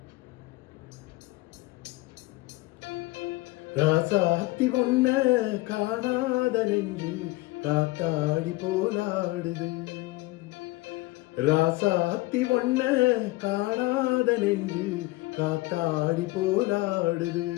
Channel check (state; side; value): quieter; right; 20.6 dB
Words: ராசாத்தி ஒன்ன காணாத நெஞ்சு காத்தாடி போலாடுது. ராசாத்தி ஒன்ன காணாத நெஞ்சு காத்தாடி போலாடுது.